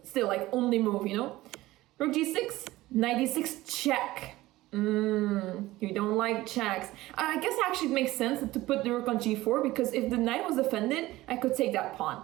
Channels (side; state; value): left; quieter; 17.6 dB